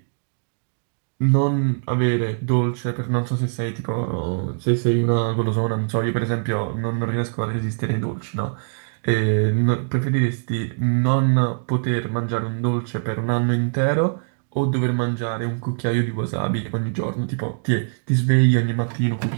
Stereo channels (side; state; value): left; silent; digital silence